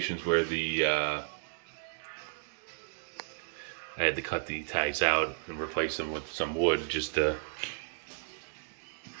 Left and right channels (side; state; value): left; silent; digital silence